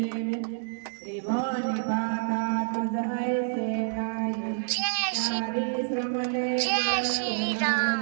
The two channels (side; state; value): left; silent; digital silence